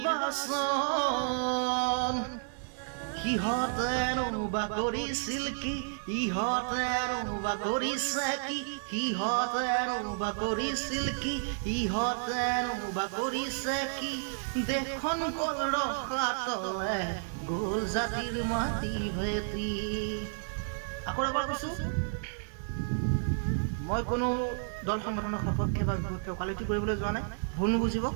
সিহঁতেনো বা কৰিছিল কি, ইহঁতেনো বা কৰিছে কি, সিহঁতেনো বা কৰিছিল কি, ইহঁতেনো বা কৰিছে কি। দেশখন গ'ল ৰসাতলে, গ'ল জাতিৰ মাটি ভেটি। আকৌ এবাৰ কৈছোঁ, মই কোনো দল সংগঠনৰ সপক্ষে বা বিপক্ষে ওকালতি কৰিবলৈ যোৱা নাই, ভুল নুবুজিব।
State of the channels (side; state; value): left; silent; digital silence